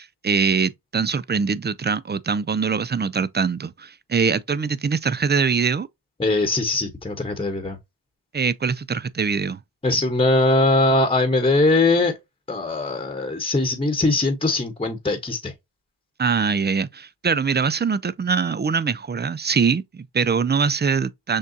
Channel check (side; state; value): both; normal; correlation 0.38